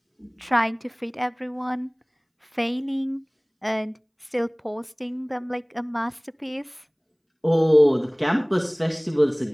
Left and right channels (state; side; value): identical; both; correlation 1.00